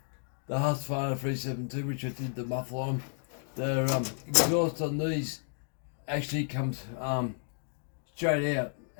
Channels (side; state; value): right; silent; digital silence